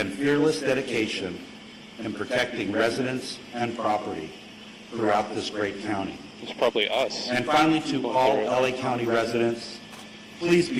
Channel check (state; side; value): identical; both; correlation 1.00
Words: fearless dedication in protecting residents and property throughout this great county. It's probably us. And finally, to all LA County residents, please